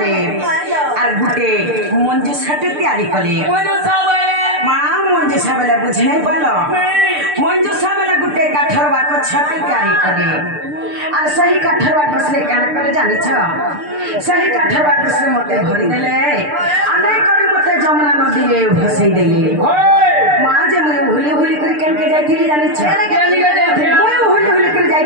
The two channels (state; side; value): late; left; 6.7 ms